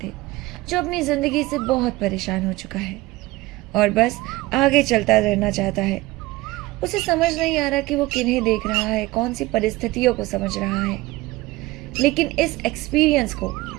जो अपनी ज़िंदगी से बहुत परेशान हो चुका है और बस आगे चलता रहना चाहता है। उसे समझ नहीं आ रहा कि वो किन्हें देख रहा है, कौन सी परिस्थितियों को समझ रहा है, लेकिन इस एक्सपीरियंस को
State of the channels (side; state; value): left; quieter; 19.6 dB